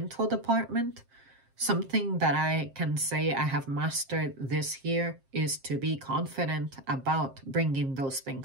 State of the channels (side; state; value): left; late; 7.5 ms